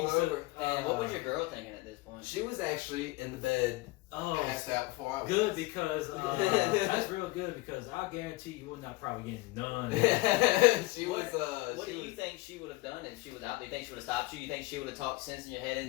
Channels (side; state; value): right; quieter; 21.8 dB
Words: over. And what was your girl thinking at this point? She was actually in the bed, passed out before I was. Good, because that's real good, because I guarantee you would not probably get none. She was. What do you think she would have done if she was out there? You think she would have stopped you? You think she would have talked sense in your head?